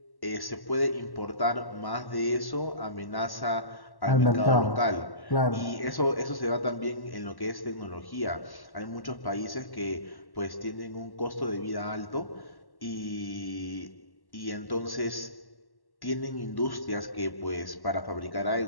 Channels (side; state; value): right; late; 1.1 ms